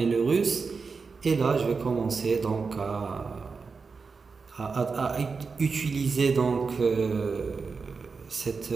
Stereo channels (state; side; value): quieter; left; 4.8 dB